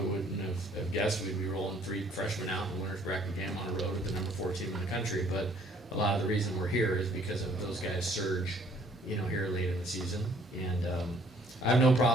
wouldn't have guessed we'd be rolling 3 freshmen out in the winner's bracket game on the road with the number 4 team in the country. But a lot of the reason we're here is because of those guys' surge, here late in the season. And I have no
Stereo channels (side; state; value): both; normal; correlation 0.61